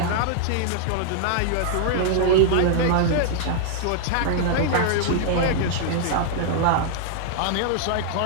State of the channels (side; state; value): both; different; correlation -0.01